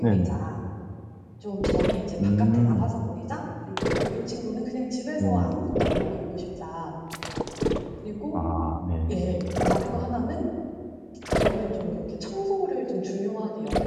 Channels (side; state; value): both; identical; correlation 1.00